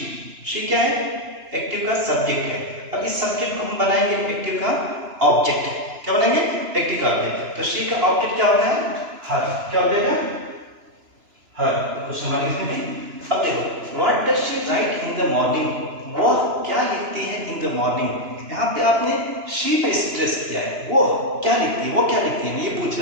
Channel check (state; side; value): late; left; 2.9 ms